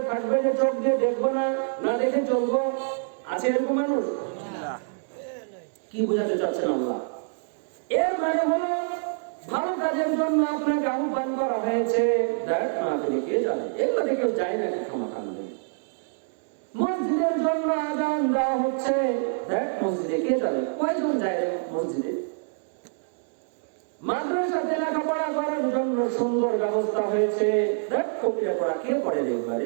থাকবে যে চোখ দিয়ে দেখবো না, না দেখে চলবো? আছে এরকম মানুষ? কি বোঝাতে চাচ্ছেন আল্লাহ? এর মানে হলো ভালো কাজের জন্য আপনাকে আহ্বান করা হয়েছে, দেখ না আপনি কে জানে, এগুলো কেউ যায় নাকি ক্ষমাকাণ্ডে। মসজিদের জন্য আযান দেওয়া হচ্ছে, দেখ মসজিদে কে যাবে, কয়জন যায় মসজিদে। মাদ্রাসাতে লেখাপড়া করার জন্য সুন্দর ব্যবস্থা হয়েছে, দেখ কবিরা পড়া কে পড়ে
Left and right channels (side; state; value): left; silent; digital silence